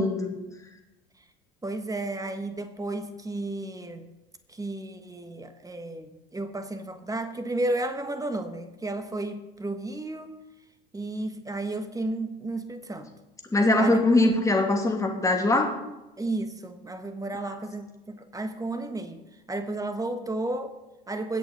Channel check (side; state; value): both; normal; correlation 0.67